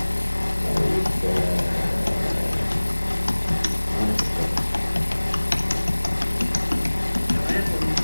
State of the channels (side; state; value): both; inverted; correlation -1.00